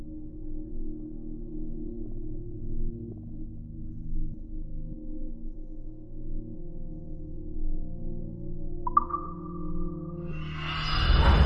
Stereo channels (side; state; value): both; identical; correlation 1.00